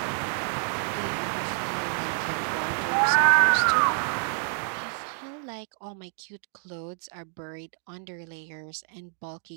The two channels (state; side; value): silent; left; 59 dB below the other